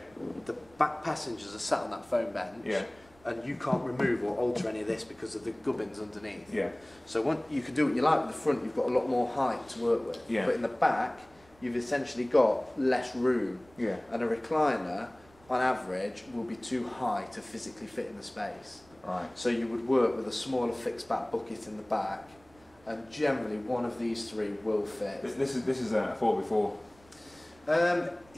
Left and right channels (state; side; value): noise; right; rumble, 28 dB below the sound